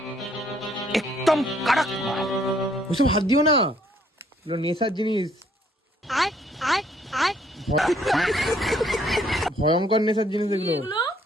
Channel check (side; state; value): both; normal; correlation 0.65